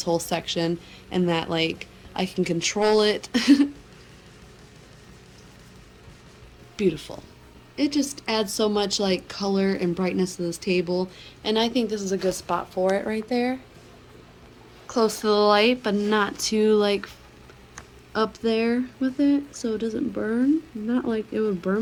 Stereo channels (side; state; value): both; identical; correlation 1.00